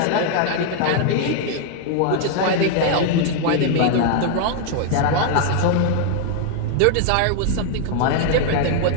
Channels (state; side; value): different; both; correlation 0.00